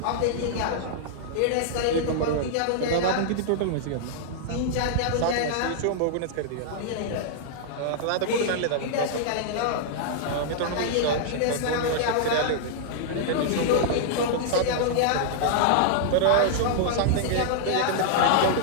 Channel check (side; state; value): both; different; correlation -0.01